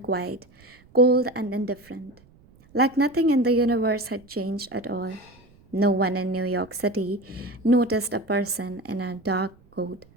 quiet, cold and indifferent, like nothing in the universe had changed at all. No one in New York City noticed a person in a dark coat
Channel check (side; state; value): right; noise; rumble, 28 dB below the sound